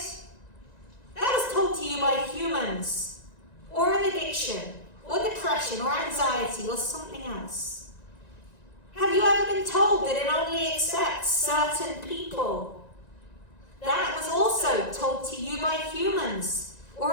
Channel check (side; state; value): right; late; 1.9 ms